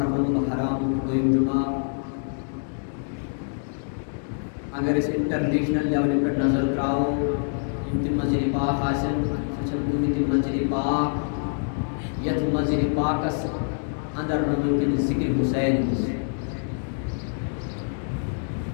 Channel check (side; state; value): right; silent; digital silence